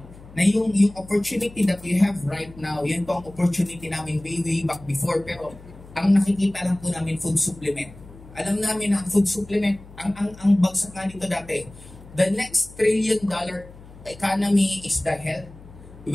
na yung opportunity that we have right now, yan po ang opportunity namin way back before. Pero ang nakikita lang po namin food supplement. Alam namin na ang food supplement, ang bagsak nga nito dati, the next $1 trillion economy is the health,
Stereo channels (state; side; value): noise; left; hum, 20 dB below the sound